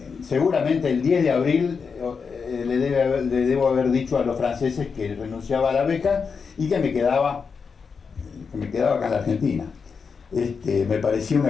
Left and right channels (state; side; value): quieter; right; 5.6 dB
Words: seguramente el 10 de abril le debo haber dicho a los franceses que renunciaba a la beca y que me quedaba acá en la Argentina. Me parecía